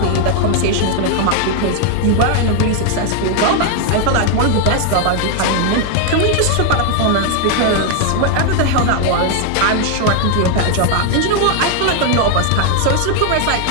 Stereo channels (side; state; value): both; different; correlation 0.00